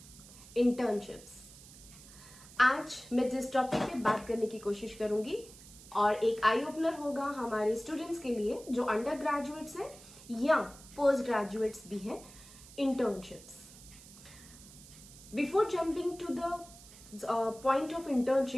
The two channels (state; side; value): noise; right; hiss, 19 dB below the sound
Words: Internships. आज मैं जिस topic पे बात करने की कोशिश करूंगी और एक आई ओपनर होगा हमारे स्टूडेंट्स के लिए जो अंडर ग्रेजुएट्स हैं या पोस्ट ग्रेजुएट्स भी हैं, internships. Before jumping to the point of